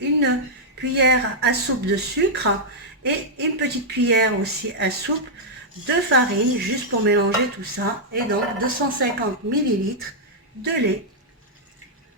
cuillère à soupe de sucre et une petite cuillère aussi à soupe de farine, juste pour mélanger tout ça. Et donc 250 millilitres de lait.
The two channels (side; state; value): both; normal; correlation -0.06